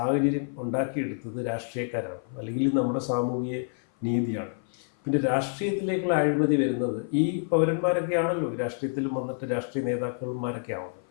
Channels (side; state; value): right; silent; 56 dB below the other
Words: ഉണ്ടാക്കിയെടുത്തത് രാഷ്ട്രീയക്കാരാണ്, അല്ലെങ്കിൽ നമ്മുടെ സാമൂഹിക നീതിയാണ്. പിന്നെ രാഷ്ട്രീയത്തിലേക്കുള്ള അഴിമതി വരുന്നത് ഈ പൗരന്മാരൊക്കെ ആണല്ലോ രാഷ്ട്രീയത്തിലും വന്നിട്ട് രാഷ്ട്രീയ നേതാക്കന്മാരൊക്കെ ആവുന്നത്.